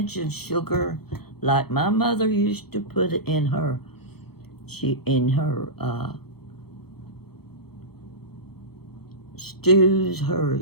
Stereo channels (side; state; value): right; late; 0.96 ms